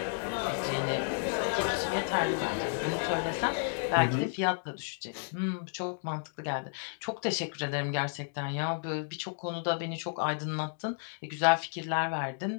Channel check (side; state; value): right; silent; digital silence